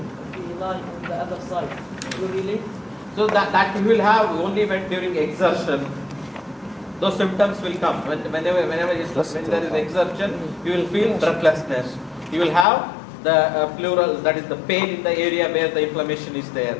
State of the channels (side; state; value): right; drops out; at 12.7 s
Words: if we lie on the other side, you really? So that you will have only when during exertion. Those symptoms will come. When there is exertion, you will feel breathlessness. You will have the pleural, that is the pain in the area where the inflammation is there.